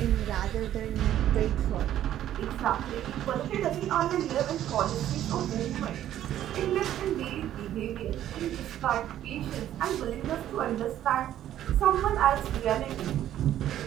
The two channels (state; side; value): quieter; left; 11.9 dB